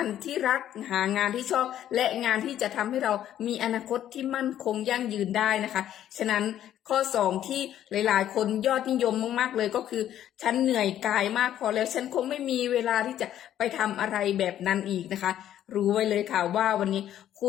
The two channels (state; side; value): quieter; right; 11.4 dB